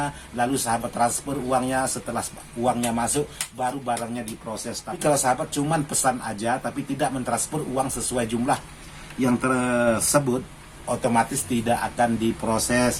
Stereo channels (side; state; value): both; identical; correlation 1.00